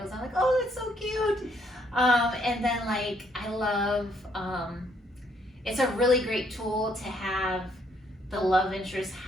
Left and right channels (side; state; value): both; normal; correlation 0.69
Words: I'm like, oh, that's so cute. And then like I love it's a really great tool to have the love interest